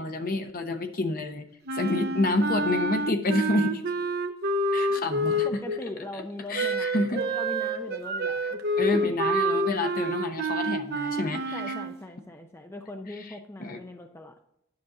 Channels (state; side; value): normal; both; correlation 0.41